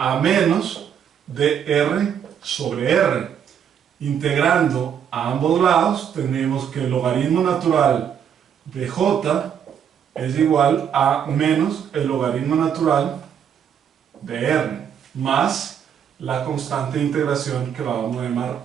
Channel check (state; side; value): quieter; left; 8.4 dB